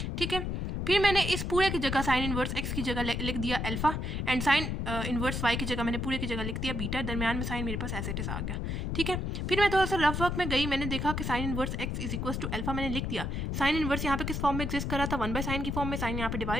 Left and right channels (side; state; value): left; noise; rumble, 2 dB below the sound